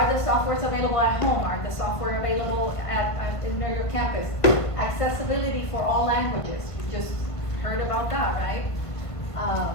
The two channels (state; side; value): late; right; 1.5 ms